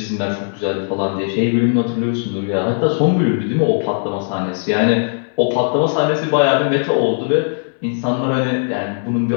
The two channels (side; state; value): right; silent; 66 dB below the other